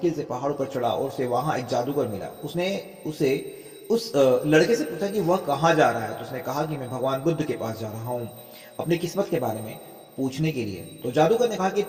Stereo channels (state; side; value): identical; both; correlation 1.00